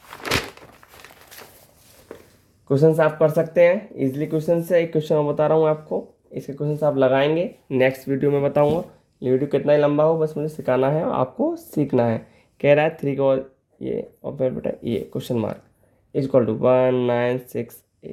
क्वेश्चंस आप कर सकते हैं इजीली, क्वेश्चन से एक क्वेश्चन मैं बता रहा हूँ आपको, इसके क्वेश्चंस आप लगाएंगे, नेक्स्ट वीडियो में बताऊंगा, ये वीडियो कितना ही लंबा हो बस मुझे सिखाना है, आपको सीखना है, कह रहा है 3 का ये, और फिर बेटा ये क्वेश्चन मार्क इक्वल टू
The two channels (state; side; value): identical; both; correlation 1.00